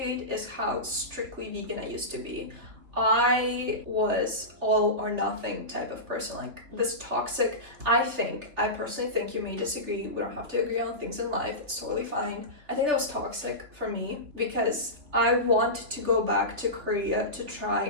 is how strictly vegan I used to be. I was all or nothing type of person, like this toxic. I personally think, you may disagree, we don't have to agree on things in life, it's totally fine. I think that was toxic for me because I want to go back to Korea to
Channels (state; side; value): late; left; 3.5 ms